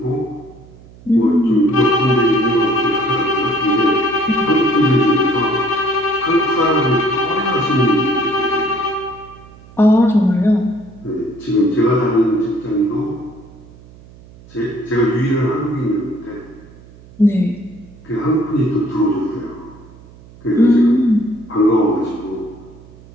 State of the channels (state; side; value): noise; right; hum, 22 dB below the sound